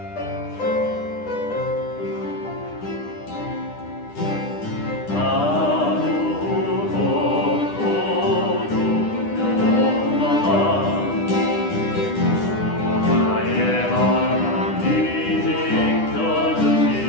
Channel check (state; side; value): late; right; 9.9 ms